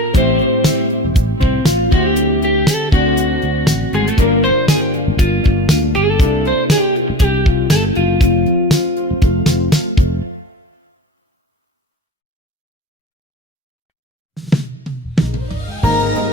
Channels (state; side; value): normal; both; correlation 0.36